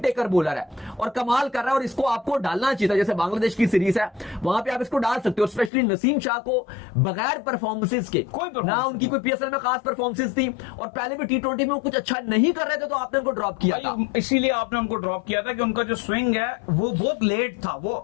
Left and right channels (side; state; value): right; drops out; at 5.7 s